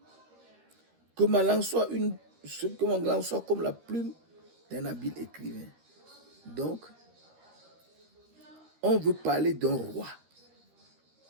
Que ma langue soit comme la plume d'un habile écrivain. Donc, on veut parler d'un roi.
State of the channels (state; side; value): late; left; 13 ms